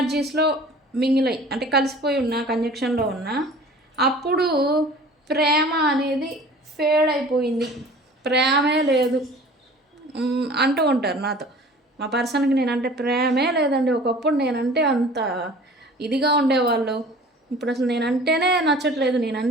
మింగిలై అంటే కలిసిపోయి ఉన్న, కంజక్షన్లో ఉన్న, అప్పుడు ప్రేమ అనేది ఫేడ్ అయిపోయింది, ప్రేమే లేదు అంటూ ఉంటారు నాతో. మా పర్సన్కి నేనంటే ప్రేమే లేదండి, ఒకప్పుడు నేనంటే అంత ఇదిగా ఉండేవాళ్ళు, ఇప్పుడు అసలు నేనంటేనే నచ్చట్లేదు,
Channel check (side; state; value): both; normal; correlation 0.45